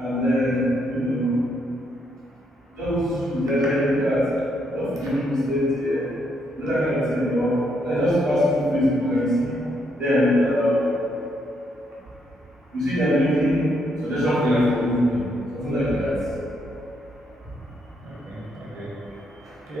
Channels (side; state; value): both; normal; correlation 0.75